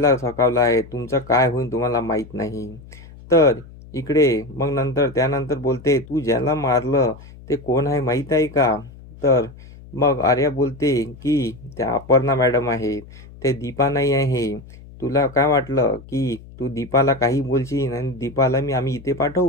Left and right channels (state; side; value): noise; left; hum, 19 dB below the sound